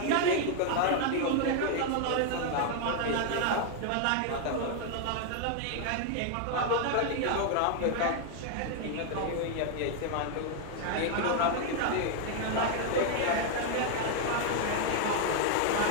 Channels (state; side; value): different; both; correlation 0.00